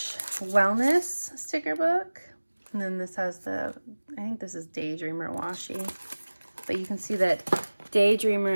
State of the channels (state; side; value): inverted; both; correlation -1.00